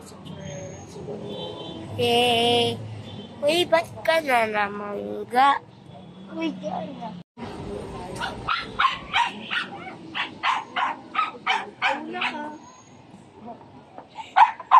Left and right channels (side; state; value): both; identical; correlation 1.00